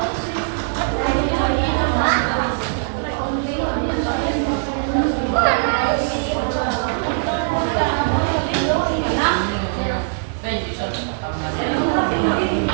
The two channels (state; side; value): silent; left; digital silence